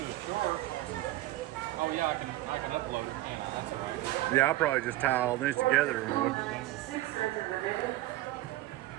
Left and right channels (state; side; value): quieter; left; 16.4 dB